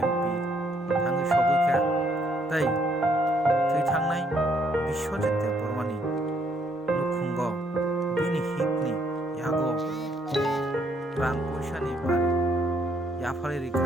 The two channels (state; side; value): normal; both; correlation 0.70